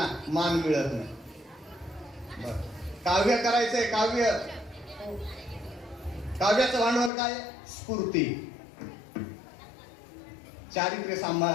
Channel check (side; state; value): right; drops out; at 7.1 s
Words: मान मिळत नाही. बरं, काव्य करायचंय, काव्याचं भांडवल काय? स्फूर्ती. चारित्र्य